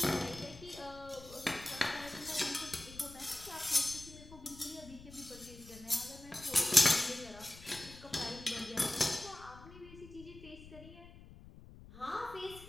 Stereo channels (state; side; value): noise; left; rumble, 17 dB below the sound